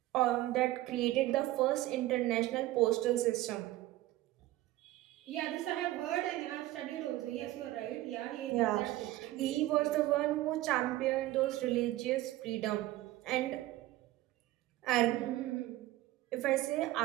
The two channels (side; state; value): left; quieter; 16.4 dB